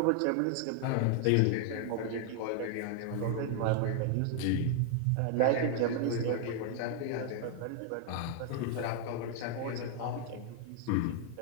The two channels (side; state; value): both; different; correlation 0.00